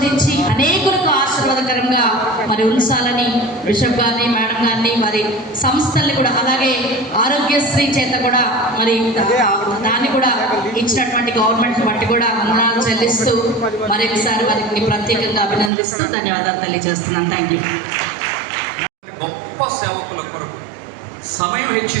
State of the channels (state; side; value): drops out; left; at 15.7 s